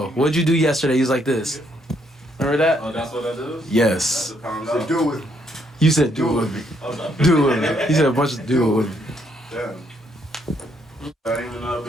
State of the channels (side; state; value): both; normal; correlation 0.72